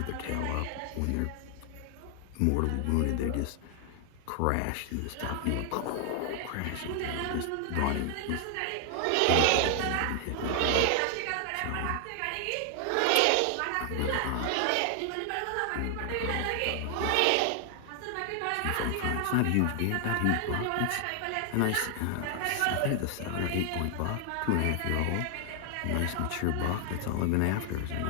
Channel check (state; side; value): different; both; correlation 0.00